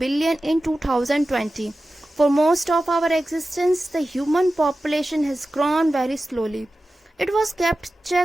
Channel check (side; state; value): both; normal; correlation 0.94